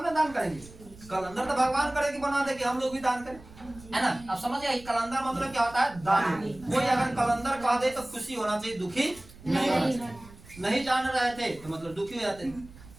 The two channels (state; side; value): noise; right; rumble, 20 dB below the sound